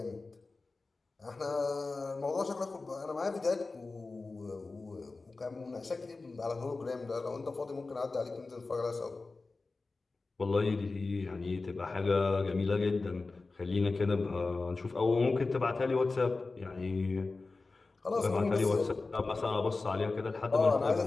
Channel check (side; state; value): right; quieter; 3.7 dB